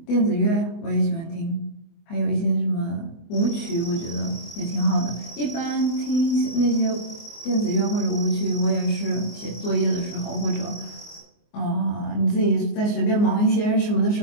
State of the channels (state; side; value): late; right; 24 ms